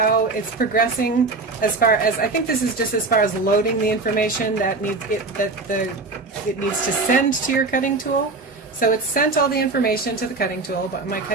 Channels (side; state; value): left; quieter; 3.6 dB